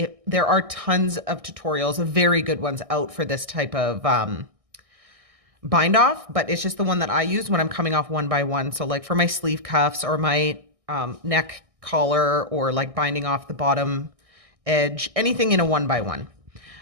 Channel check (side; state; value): left; late; 1.6 ms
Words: There are tons of tutorials, very good ones out for this type of bind off, but it's just the one that I use when I'm coming off one by one. So like for my sleeve cuffs or my neck collar, or like binding off the bottom edge, anything in a one by one.